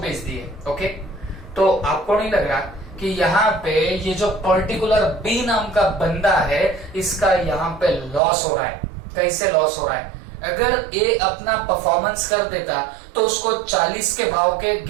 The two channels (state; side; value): drops out; left; at 8.2 s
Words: दिए। ओके, तो आपको नहीं लग रहा कि यहाँ पे ये जो पर्टिकुलर बी नाम का बंदा है इसका यहाँ पे लॉस हो रहा है? कैसे लॉस हो रहा है? अगर ए अपना परफॉर्मेंस कर देता तो उसको 40 के भाव के